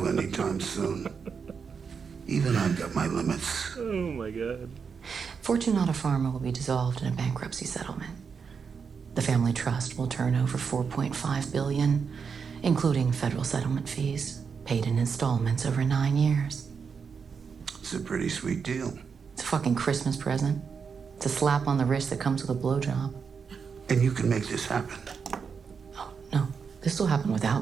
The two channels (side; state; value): left; quieter; 6.0 dB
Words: anytime soon? Even I've got my limits. Oh my God. Fortunata Pharma will be dissolved in a bankruptcy settlement. The family trust will turn over $4.5 billion, including federal settlement fees, paid in installments over 9 years. It's a pretty sweet deal. It's a fucking Christmas present. It's a slap on the wrist that comes with a blowjob. And you can make this happen. Oh, no. This will happen